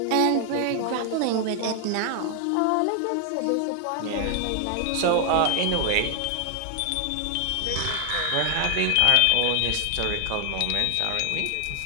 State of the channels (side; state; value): both; different; correlation 0.00